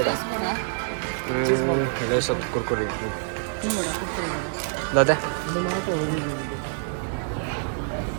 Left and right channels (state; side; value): silent; left; 61 dB below the other